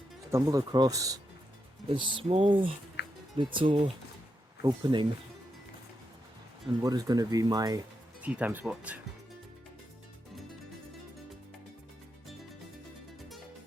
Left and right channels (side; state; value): both; normal; correlation 0.84